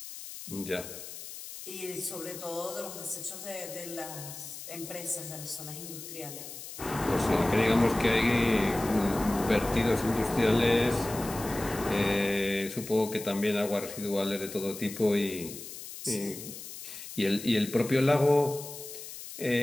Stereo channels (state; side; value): noise; left; hiss, 12 dB below the sound